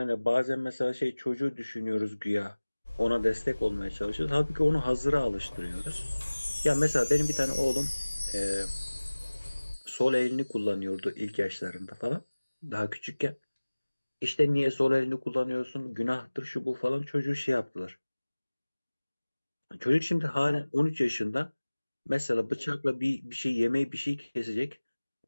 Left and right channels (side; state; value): both; inverted; correlation -1.00